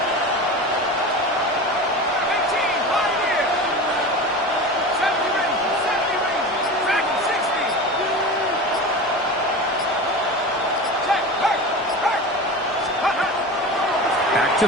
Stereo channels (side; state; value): both; normal; correlation 0.30